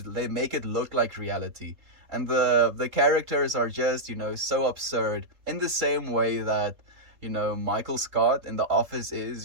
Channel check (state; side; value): late; left; 3.7 ms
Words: make it look like reality, and the characters are just, you know, so absurd in the same way that, you know, Michael Scott in The Office is,